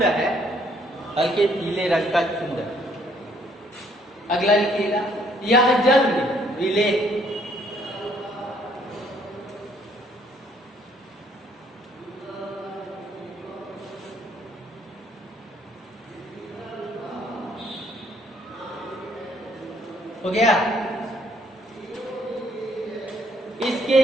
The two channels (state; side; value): normal; both; correlation 0.66